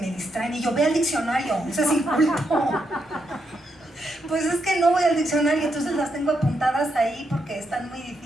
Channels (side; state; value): both; normal; correlation 0.81